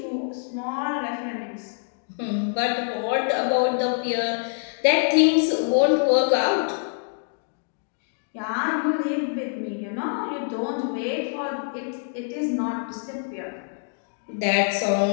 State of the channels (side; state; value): right; silent; digital silence